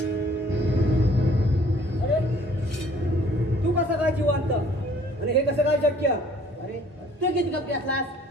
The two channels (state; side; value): normal; both; correlation 0.57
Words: अरे तू कसं काय जिवंत आणि हे कसं काय शक्य? अरे तू किती कपडे